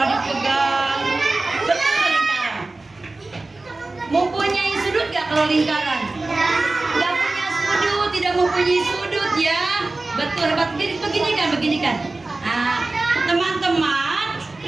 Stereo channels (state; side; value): quieter; left; 3.2 dB